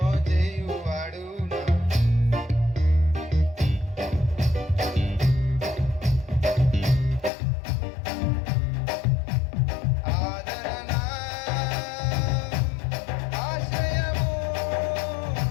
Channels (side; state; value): right; drops out; at 7.3 s